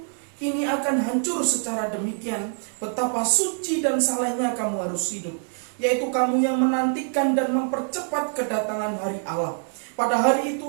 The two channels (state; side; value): silent; left; 58 dB below the other